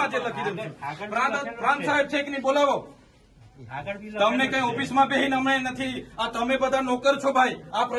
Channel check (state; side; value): identical; both; correlation 1.00